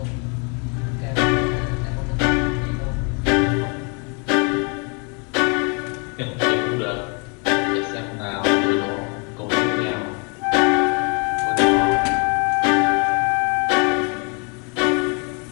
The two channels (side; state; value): right; quieter; 34.9 dB